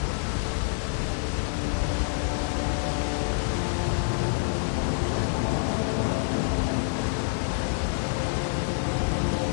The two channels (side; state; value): right; silent; 60 dB below the other